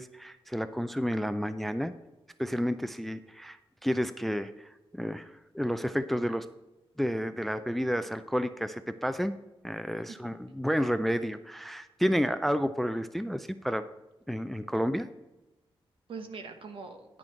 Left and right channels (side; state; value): both; normal; correlation 0.97